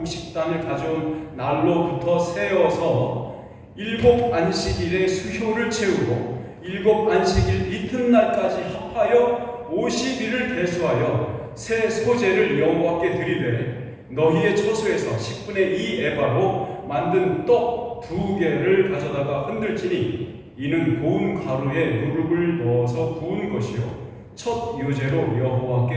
가져온 날로부터 세어서 7 안식일의 수효를 채우고 7 안식일 이튿날까지 합하여 50일을 대수하여 새 소재를 여호와께 드리되 너희의 처소에서 10분의 2 에바로 만든 떡 2개를 가져다가 흔들지니 이는 고운 가루에 누룩을 넣어서 부은 것이요 첫 요제로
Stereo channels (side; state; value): both; identical; correlation 1.00